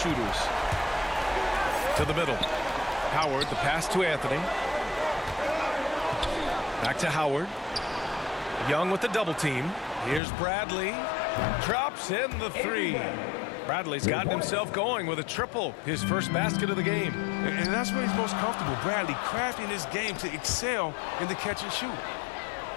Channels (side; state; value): right; drops out; at 10.2 s